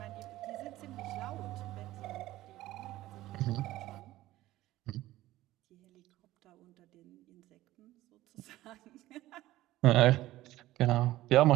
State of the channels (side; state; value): left; quieter; 16.1 dB